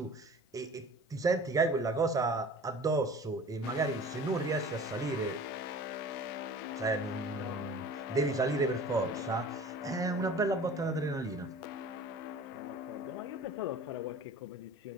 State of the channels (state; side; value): normal; both; correlation 0.43